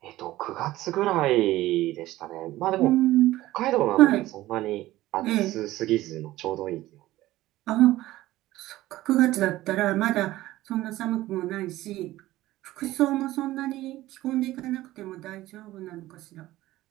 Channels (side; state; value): left; quieter; 16.3 dB